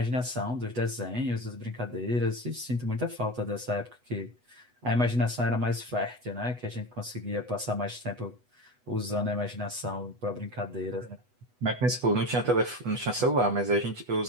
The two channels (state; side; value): late; left; 8.1 ms